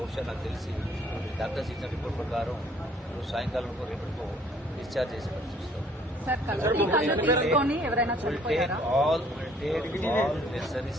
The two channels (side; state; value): both; normal; correlation 0.60